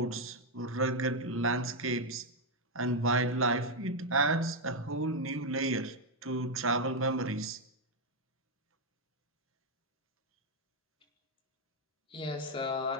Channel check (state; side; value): normal; both; correlation 0.01